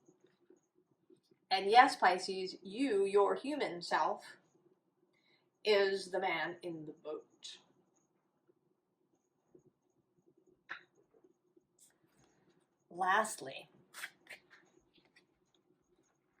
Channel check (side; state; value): both; identical; correlation 1.00